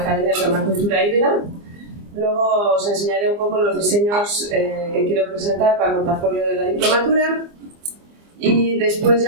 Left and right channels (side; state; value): left; late; 24 ms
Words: de Permacultura Híbrida. Luego os enseñaré un poco los diseños que quiero presentar para el portafolio de la diplomatura y después